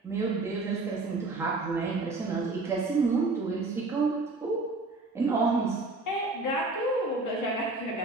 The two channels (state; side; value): quieter; left; 3.3 dB